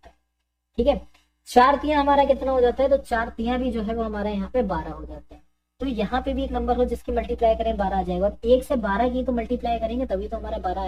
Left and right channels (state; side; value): identical; both; correlation 1.00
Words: है। ठीक है, 4 तिया हमारा कितना हो जाता है, तो 4 तिया भी जो है वो हमारा यहाँ पे 12 हो जाते हैं। तो यहाँ पे भी एक नंबर हो जिसकी मल्टीप्लाई करें 12 आ जाएगा, और 1 से 12 की तो मल्टीप्लाई करेंगे तभी तो हमारा 12